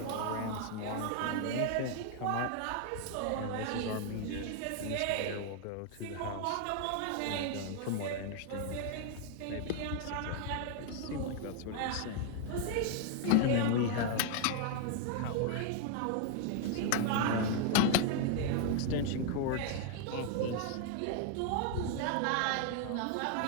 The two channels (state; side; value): different; both; correlation 0.00